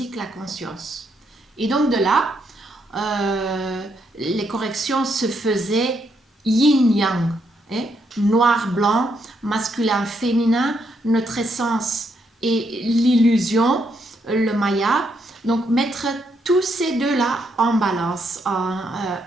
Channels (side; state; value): both; normal; correlation 0.77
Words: la conscience. Et donc de là, les corrections se faisaient yin-yang, noir-blanc, masculin-féminin, notre essence et l'illusion, le maya. Donc mettre tous ces deux-là en balance,